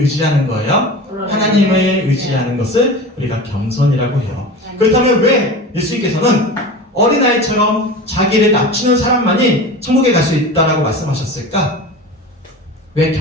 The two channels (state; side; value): normal; both; correlation 0.32